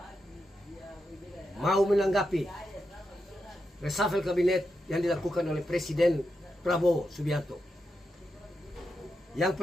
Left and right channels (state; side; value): normal; both; correlation 0.86